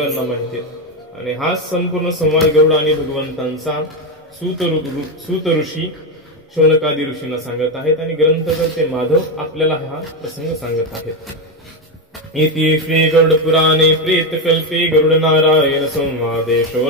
माहिती आहेत. आणि हा संपूर्ण संवाद गरुड आणि भगवंतांचा सूत ऋषी शौनकादी ऋषींना सांगत आहेत आणि ग्रंथकर्ते माधव आपल्याला हा प्रसंग सांगत आहेत. इति श्री गरुड पुराणे प्रेतकल्पे गरुड नारायण संवादे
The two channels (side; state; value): both; normal; correlation 0.10